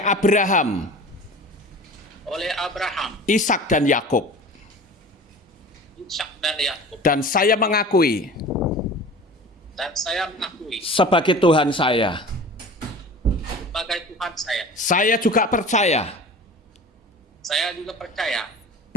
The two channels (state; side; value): normal; both; correlation 0.39